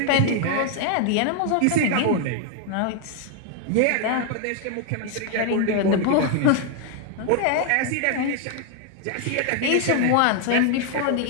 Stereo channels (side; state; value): both; different; correlation 0.00